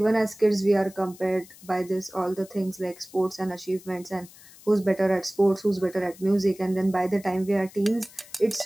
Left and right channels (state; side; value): noise; left; hiss, 22 dB below the sound